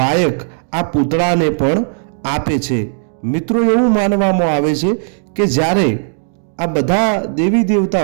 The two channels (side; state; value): left; silent; digital silence